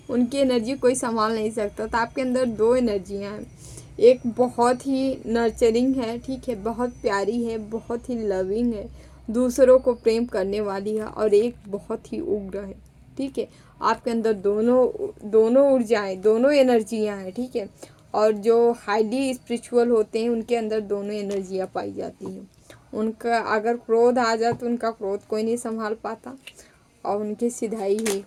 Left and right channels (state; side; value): identical; both; correlation 1.00